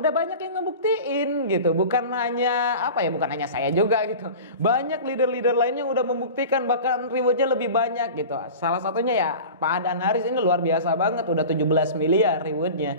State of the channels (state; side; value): inverted; both; correlation -0.35